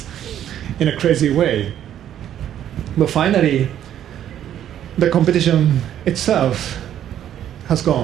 in a crazy way. But finally, the competition itself has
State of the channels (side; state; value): left; quieter; 10.7 dB